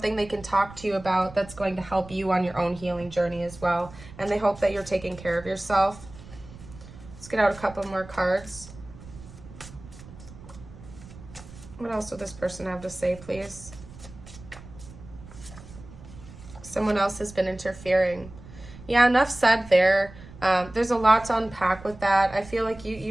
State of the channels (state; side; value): noise; right; rumble, 17 dB below the sound